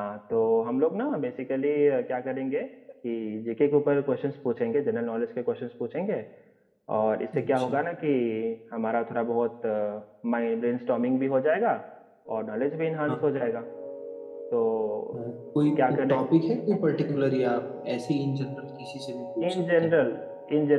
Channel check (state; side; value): identical; both; correlation 1.00